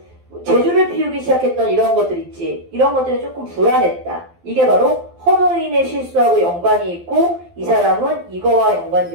제주를 피우기 시작했던 이런 것들 있지. 이런 것들이 조금 불안했다. 이게 바로 허노인의 실수하고 연관이 있고 이 사람은 이거와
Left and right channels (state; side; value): late; left; 12 ms